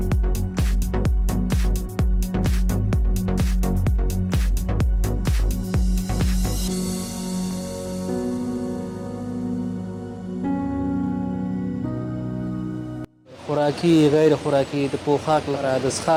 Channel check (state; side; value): identical; both; correlation 1.00